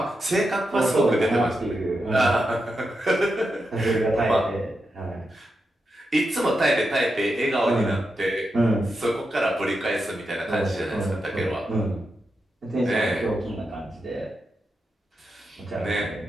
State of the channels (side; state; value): both; normal; correlation 0.87